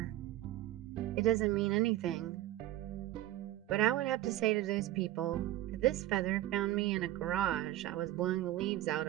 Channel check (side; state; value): left; quieter; 15.0 dB